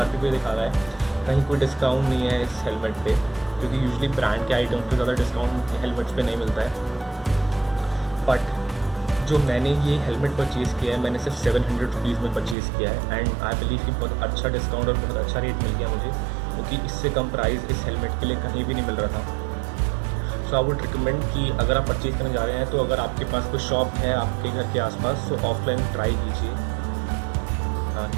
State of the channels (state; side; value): drops out; left; at 12.6 s